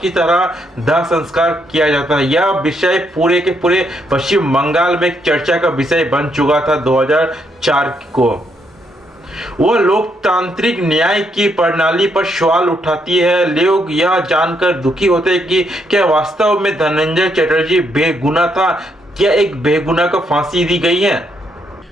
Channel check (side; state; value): both; normal; correlation 0.76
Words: की तरह दाह संस्कार किया जाता है। यह विषय पूरे के पूरे पश्चिम बंगाल में एक चर्चा का विषय बन चुका था 2004 को। वह लोकतांत्रिक न्याय की प्रणाली पर सवाल उठाती है। लोग यह जानकर दुखी होते हैं कि क्या वास्तव में धनंजय चटर्जी बेगुनाह था, क्या एक बेगुनाह को फांसी दी गई है।